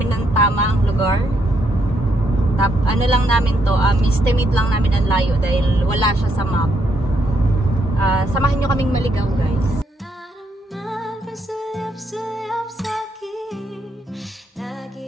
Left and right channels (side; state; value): both; normal; correlation 0.76